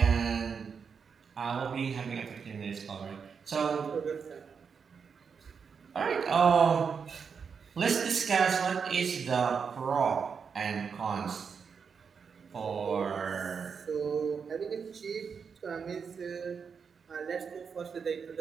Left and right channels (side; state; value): left; quieter; 6.1 dB